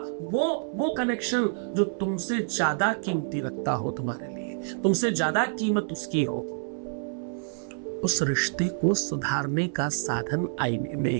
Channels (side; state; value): left; silent; 60 dB below the other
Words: वो कनेक्शन जो तुमसे ज्यादा कीमती रखता हो, तुम्हारे लिए तुमसे ज्यादा कीमत उसकी हो, उस रिश्ते को सुधारने का साधन आईने